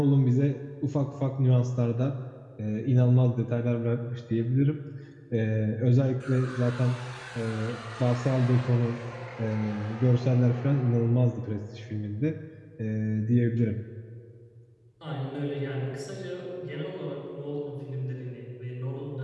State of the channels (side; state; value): both; identical; correlation 1.00